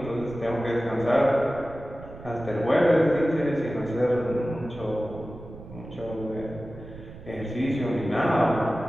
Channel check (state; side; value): noise; right; rumble, 16 dB below the sound